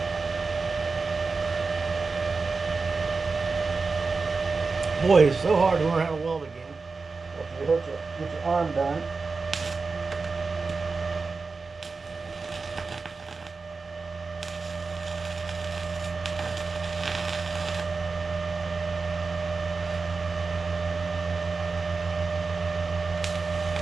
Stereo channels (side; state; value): left; quieter; 4.3 dB